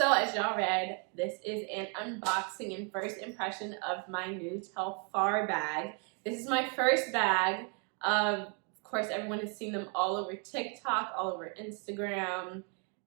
as y'all read, this is an unboxing and first impression of my new Telfar bag. This is my first bag. Of course, everyone has seen them all over TikTok, all over Instagram.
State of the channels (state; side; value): quieter; left; 37.0 dB